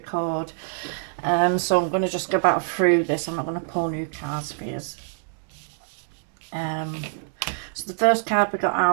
So I'm going to just go back through this. I'm not going to pull new cards for you. So the first card we got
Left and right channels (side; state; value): left; silent; digital silence